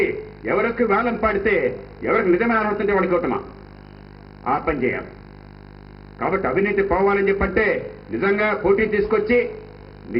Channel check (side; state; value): both; identical; correlation 1.00